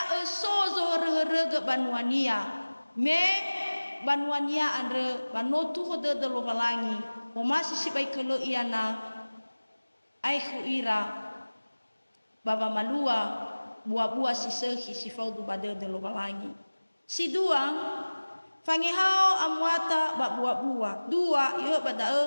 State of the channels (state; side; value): inverted; both; correlation -1.00